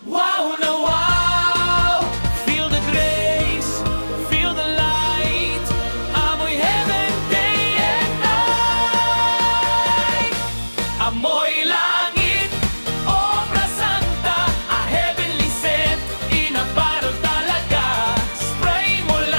Wow na wow! Feel the grace, feel the light. Amoy heaven day and night. Amoy langit, obra santa, a heavenly scent, in a bottle talaga. Spray mo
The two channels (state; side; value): inverted; both; correlation -1.00